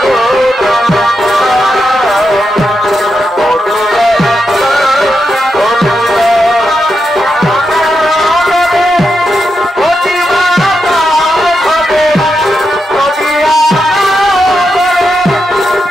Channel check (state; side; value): normal; both; correlation 0.85